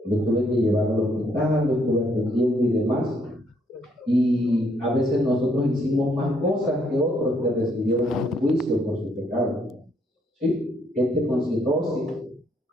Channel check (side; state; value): both; normal; correlation 0.70